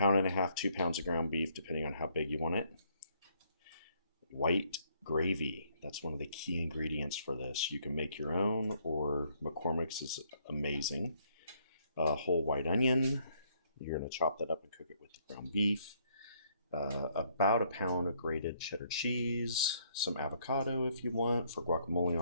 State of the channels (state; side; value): inverted; both; correlation -0.68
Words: and a half, 2 pounds of ground beef, depending on how big you want it. White gravy. That's one of the key ingredients for this. You can make your own, or McCormick's is amazing. A whole white onion. You're going to chop that up and cook it with the ground beef. About a pound of grated cheddar cheese, some avocado if you want for guacamole